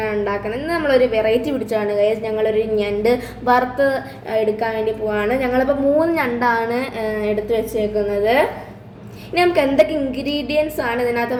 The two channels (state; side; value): identical; both; correlation 1.00